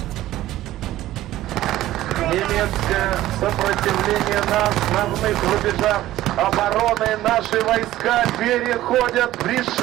немецкое сопротивление на основных рубежах обороны. Наши войска переходят в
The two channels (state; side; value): quieter; left; 14.8 dB